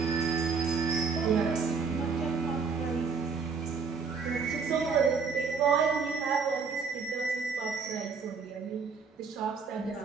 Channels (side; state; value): left; quieter; 5.2 dB